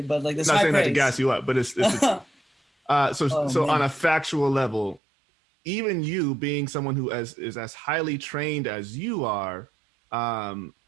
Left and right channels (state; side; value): drops out; left; at 5.0 s